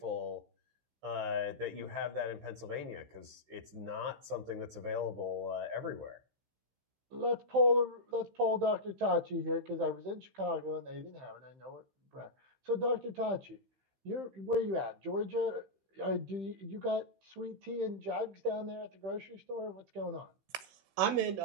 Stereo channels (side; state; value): left; late; 16 ms